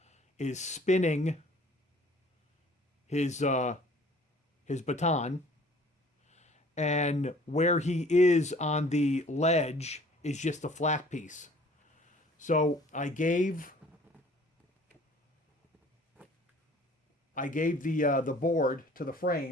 is spinning his baton, and where he is on the ledge is just a flat piece. So I gave the board to the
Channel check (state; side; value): normal; both; correlation 0.52